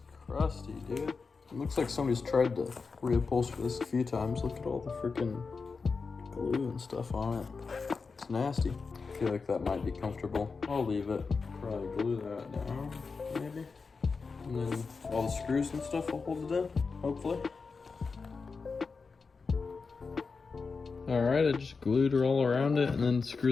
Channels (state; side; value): quieter; right; 4.7 dB